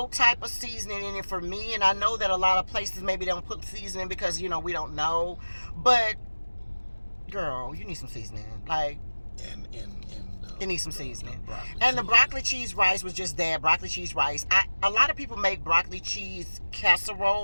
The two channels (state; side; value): inverted; both; correlation -1.00